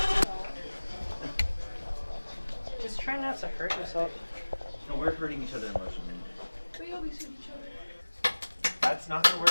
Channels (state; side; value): inverted; both; correlation -1.00